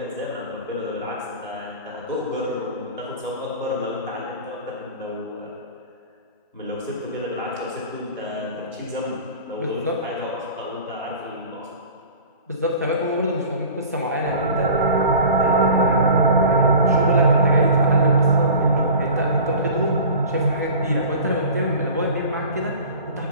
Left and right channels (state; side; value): inverted; both; correlation -0.39